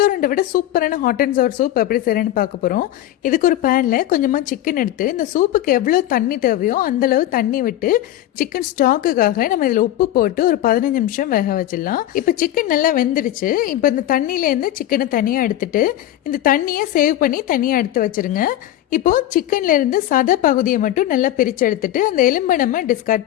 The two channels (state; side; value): quieter; right; 13.2 dB